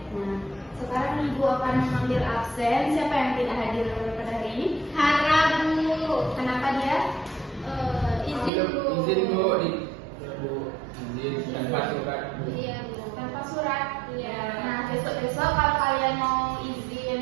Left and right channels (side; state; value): left; drops out; at 8.5 s